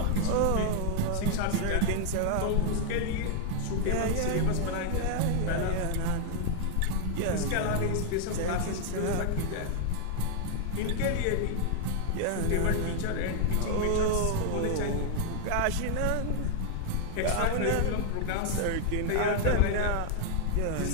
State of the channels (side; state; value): both; different; correlation 0.00